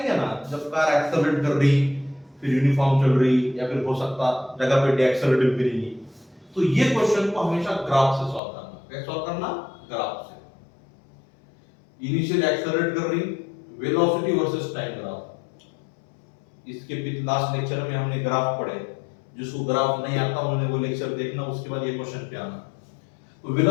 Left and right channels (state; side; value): drops out; right; at 8.4 s